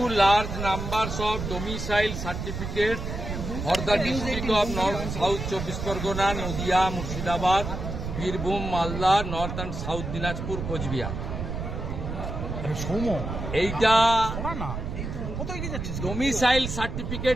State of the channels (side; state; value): right; noise; rumble, 5 dB below the sound